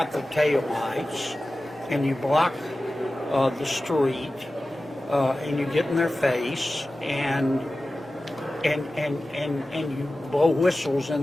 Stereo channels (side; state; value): both; normal; correlation 0.95